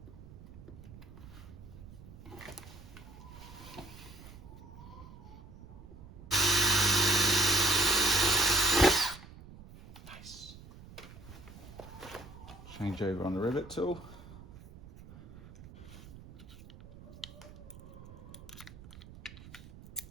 Nice. Change over on the rivet tool.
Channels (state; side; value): noise; right; rumble, 17 dB below the sound